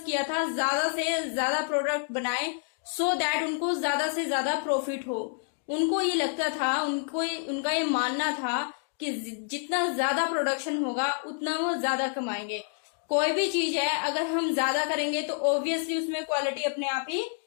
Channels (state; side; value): silent; right; 59 dB below the other